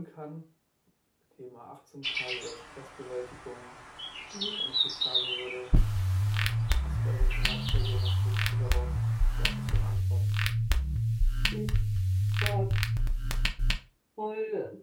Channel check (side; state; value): both; identical; correlation 1.00